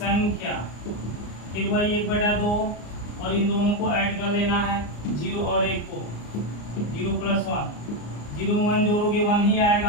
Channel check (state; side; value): late; right; 34 ms